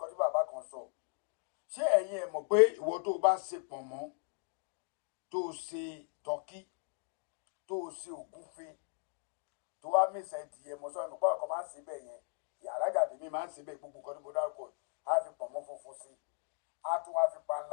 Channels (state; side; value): silent; right; 53 dB below the other